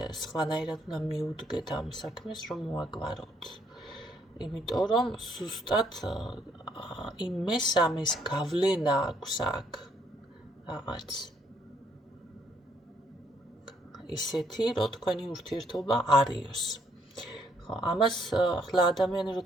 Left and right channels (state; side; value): normal; both; correlation 0.69